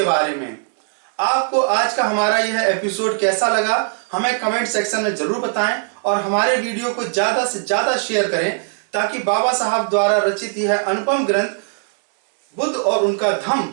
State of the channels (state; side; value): silent; left; digital silence